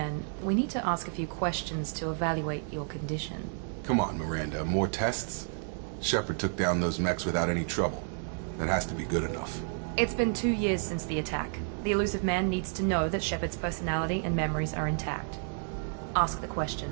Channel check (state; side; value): silent; left; 57 dB below the other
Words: we need to ask a few questions to evaluate your condition. Come on, Miranda, more tests? Shepard took down those mechs without any trouble. That has to be good enough. It's been 2 years since the attack. The elusive man needs to know that Shepard's personality and memories are intact. Ask the